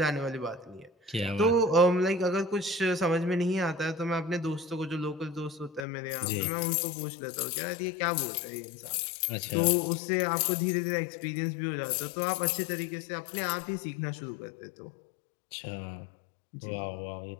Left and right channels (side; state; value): right; drops out; at 5.9 s